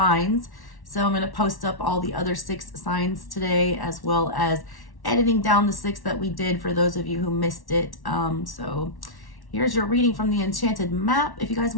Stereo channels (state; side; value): late; right; 1.1 ms